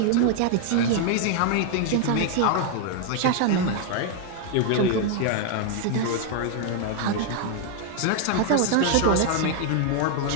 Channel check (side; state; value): both; different; correlation 0.00